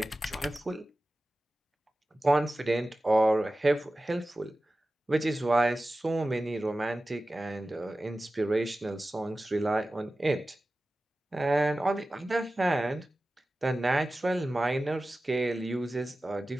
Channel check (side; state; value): both; normal; correlation 0.95